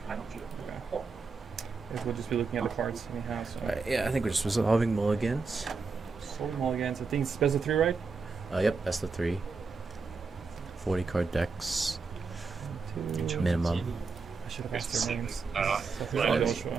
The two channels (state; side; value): quieter; left; 4.6 dB